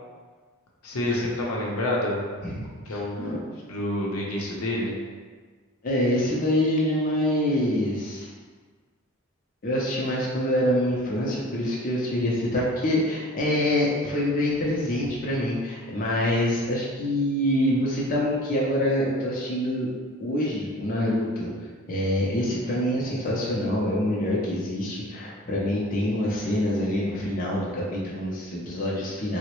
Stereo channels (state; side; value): normal; both; correlation 0.42